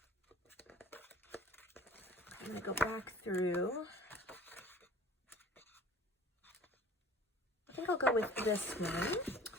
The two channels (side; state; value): both; normal; correlation 0.47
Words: I'm going to go back through. I think I'll go with this one.